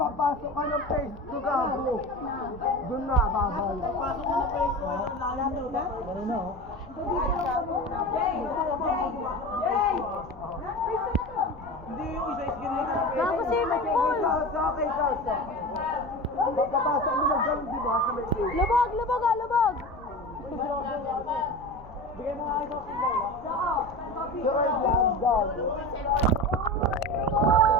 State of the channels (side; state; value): left; noise; rumble, 21 dB below the sound